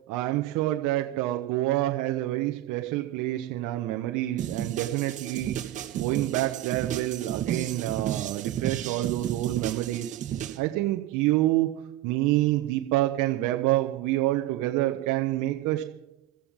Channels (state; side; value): quieter; left; 14.9 dB